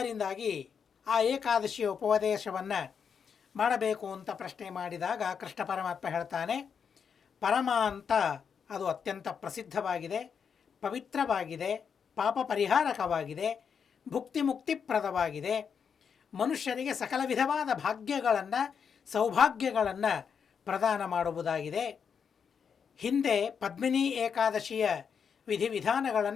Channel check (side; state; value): right; quieter; 6.8 dB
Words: ಆ ಏಕಾದಶಿಯ ಉಪದೇಶವನ್ನು ಮಾಡಬೇಕು ಅಂತ ಪ್ರಶ್ನೆ ಮಾಡಿದಾಗ ಕೃಷ್ಣ ಪರಮಾತ್ಮ ಹೇಳ್ತಾನೆ, ಪರಮ ಅಂತ ಅದು ಅತ್ಯಂತ ಪ್ರಸಿದ್ಧವಾಗಿದೆ, ಪವಿತ್ರವಾಗಿದೆ, ಪಾಪ ಪರಿಹಾರಕವಾಗಿದೆ, ಭುಕ್ತಿ ಮುಕ್ತಿಪ್ರದವಾಗಿದೆ, ಮನುಷ್ಯರಿಗೆ ಸಕಲ ವಿಧವಾದ ಭಾಗ್ಯಗಳನ್ನು ಸೌಭಾಗ್ಯಗಳನ್ನು ಪ್ರದಾನ ಮಾಡುವುದಾಗಿದೆ. ಹಿಂದೆ ಪದ್ಮಿನಿ ಏಕಾದಶಿಯ